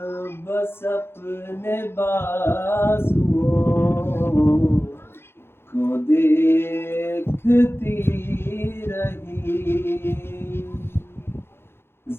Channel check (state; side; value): late; right; 0.11 ms